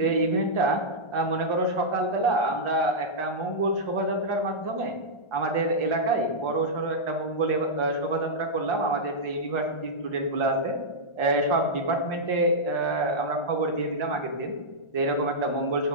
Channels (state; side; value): late; right; 1.4 ms